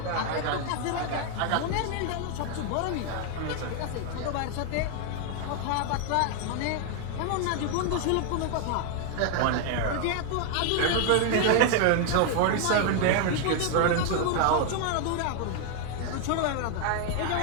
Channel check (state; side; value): different; both; correlation 0.00